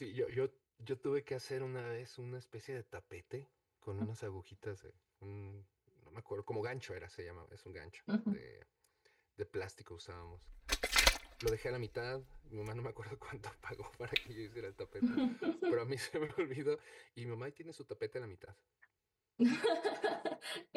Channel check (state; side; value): identical; both; correlation 1.00